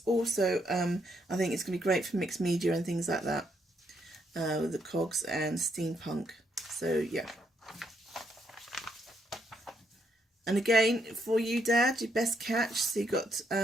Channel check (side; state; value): both; normal; correlation 0.75